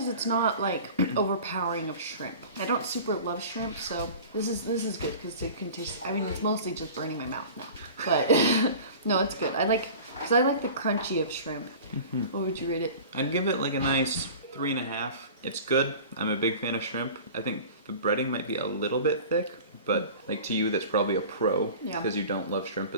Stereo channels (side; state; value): both; inverted; correlation -0.39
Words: it's not like overpowering of shrimp. I don't super love shrimp, so this is good because you can taste. I mean, it's mostly just burning my mouth now, but no, it's good. I like the crunchy of shrimp. Mm-hmm. What would you rate it? I'd give it like a nice 3.5. It's good. I'm a big fan of shrimp. I think the breading might be a little bit thick, but like to you, that's probably a pro because you don't love shrimp